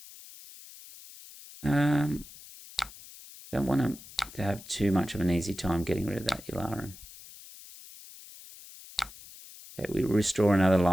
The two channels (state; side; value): noise; left; hiss, 18 dB below the sound